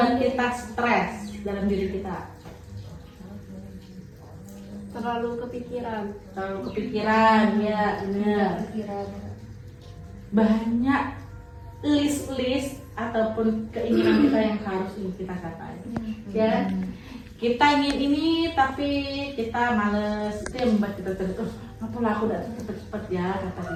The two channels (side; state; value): both; identical; correlation 1.00